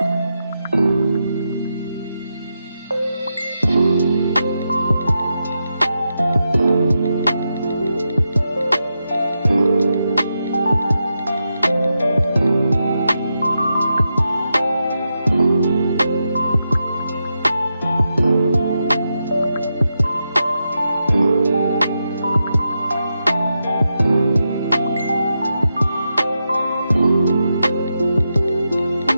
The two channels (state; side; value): inverted; both; correlation -0.86